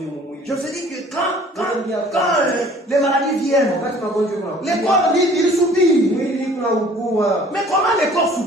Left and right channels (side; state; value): both; normal; correlation 0.52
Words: mumwili. Je vous ai dit que quand les maladies viennent, Wakati magonjwa kuna les corps ils soupirent. mwili kuna ukua. Mais comment les corps